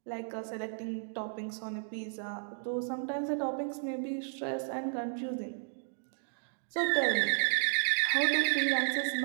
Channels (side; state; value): left; silent; digital silence